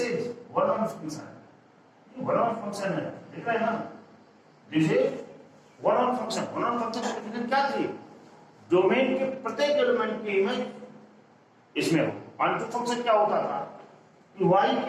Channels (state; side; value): identical; both; correlation 1.00